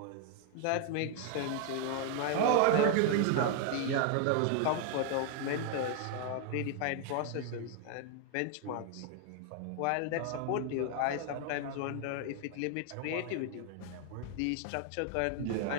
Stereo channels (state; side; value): different; both; correlation 0.00